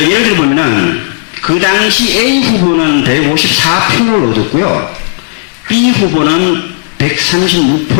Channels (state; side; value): silent; right; digital silence